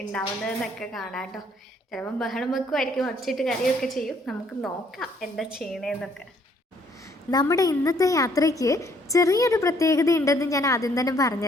ഉണ്ടാവുന്നതെന്നൊക്കെ കാണാം കേട്ടോ. ചിലപ്പം ബഹളം വെക്കുമായിരിക്കും, ഒച്ചയിട്ട് കരയൊക്കെ ചെയ്യും. നമുക്ക് നോക്കാം എന്താ ചെയ്യണേന്നൊക്കെ. നമ്മുടെ ഇന്നത്തെ യാത്രയ്ക്ക് ചെറിയൊരു പ്രത്യേകത ഉണ്ടെന്ന് ഞാൻ ആദ്യം തന്നെ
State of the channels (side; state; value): both; normal; correlation 0.65